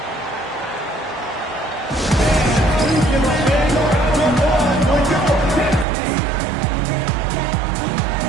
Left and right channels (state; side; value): drops out; left; at 5.9 s